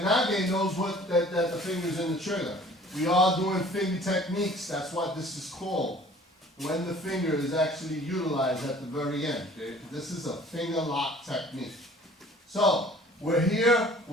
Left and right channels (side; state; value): both; normal; correlation 0.51